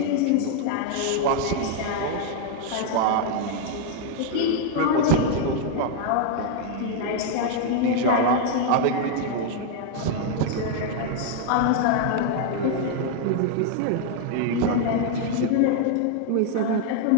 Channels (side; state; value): both; different; correlation 0.00